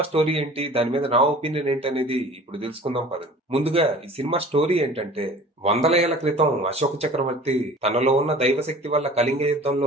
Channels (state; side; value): normal; both; correlation 0.44